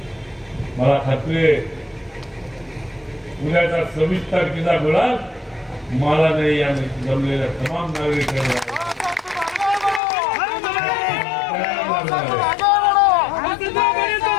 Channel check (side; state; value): right; drops out; at 10.0 s